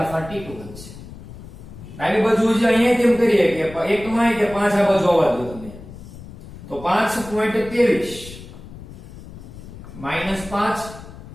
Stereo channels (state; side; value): noise; left; rumble, 15 dB below the sound